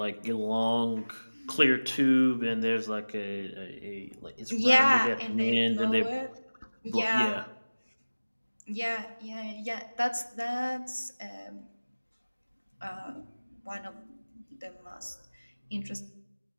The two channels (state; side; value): inverted; both; correlation -1.00